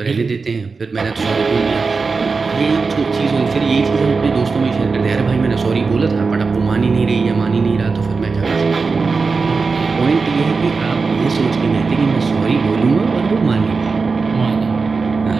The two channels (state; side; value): quieter; left; 4.5 dB